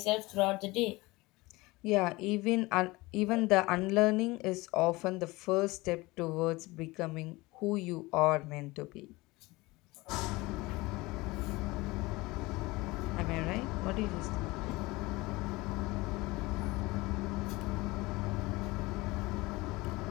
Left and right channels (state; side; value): quieter; right; 21.9 dB